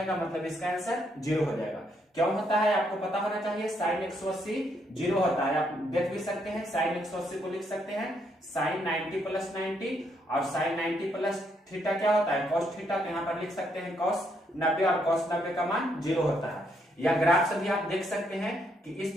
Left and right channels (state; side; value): normal; both; correlation 0.74